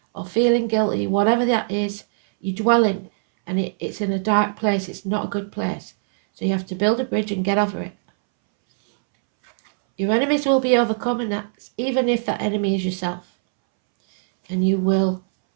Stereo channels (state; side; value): silent; left; 64 dB below the other